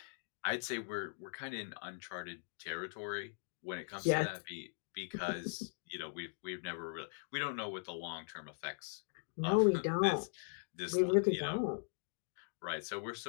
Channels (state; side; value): silent; right; digital silence